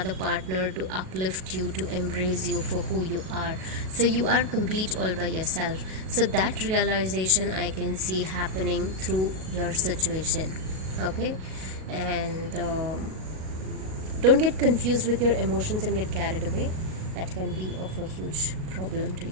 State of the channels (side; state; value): left; late; 38 ms